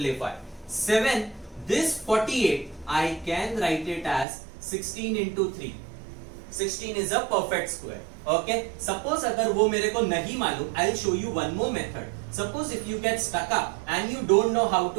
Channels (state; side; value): drops out; left; at 4.2 s